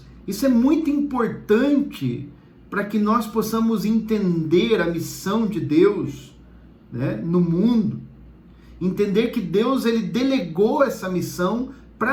isso é muito importante para que nós possamos entender a missão de Deus no mundo. Entender que Deus ele delegou essa missão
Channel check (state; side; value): identical; both; correlation 1.00